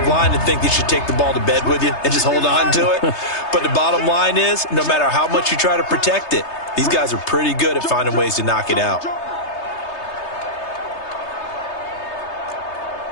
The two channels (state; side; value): late; right; 3.3 ms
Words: line to think you should take the ball to bed with you and just hold on to it. But the bottom line is, no matter how much you try to protect it, these guys are pretty good at finding ways to knock it out.